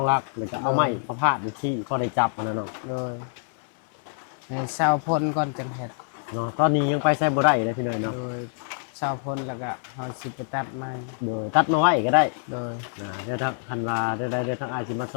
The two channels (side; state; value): right; silent; 60 dB below the other